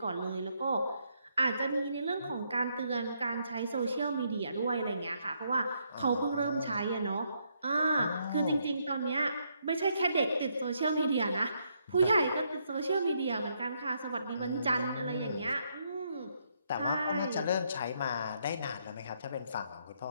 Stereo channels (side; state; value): both; inverted; correlation -0.75